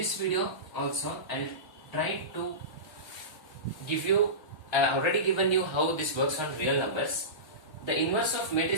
video also I'll try to give you, I have already given you how this works on real numbers. The inverse of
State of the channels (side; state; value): right; late; 1.0 ms